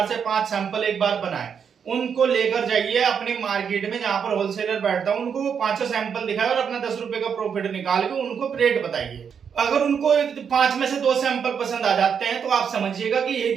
से 5 सैंपल एक बार बनाए, उनको लेकर जाइए अपनी मार्केट में जहां पर होलसेलर बैठता है, उनको वो 5 सैंपल दिखाए और अपना 10 रुपए का प्रॉफिट निकाल के उनको रेट बताइए। अगर उनको 5 में से 2 सैंपल पसंद आ जाते हैं तो आप समझिएगा कि यही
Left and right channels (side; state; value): left; quieter; 7.1 dB